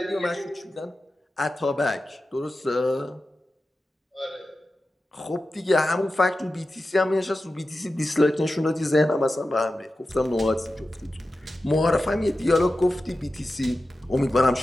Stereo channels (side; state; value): both; normal; correlation 0.93